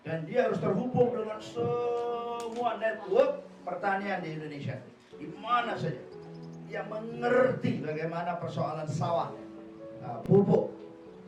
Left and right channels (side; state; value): both; identical; correlation 1.00